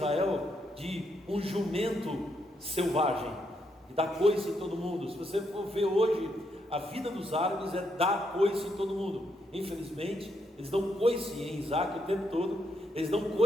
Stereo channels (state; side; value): normal; both; correlation 0.78